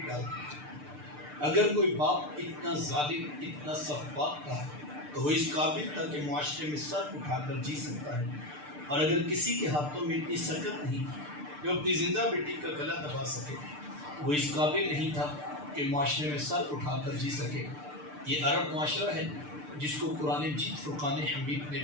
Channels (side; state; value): left; late; 6.7 ms